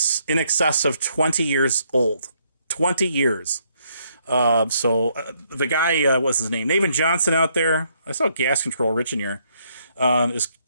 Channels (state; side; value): inverted; both; correlation -0.72